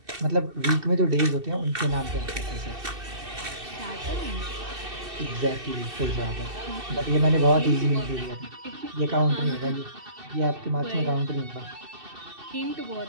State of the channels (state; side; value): late; left; 2.7 ms